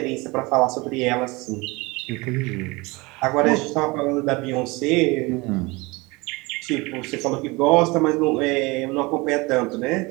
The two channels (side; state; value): left; quieter; 24.4 dB